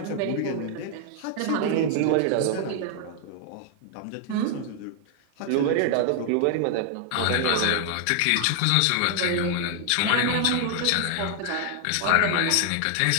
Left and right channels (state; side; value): different; both; correlation 0.00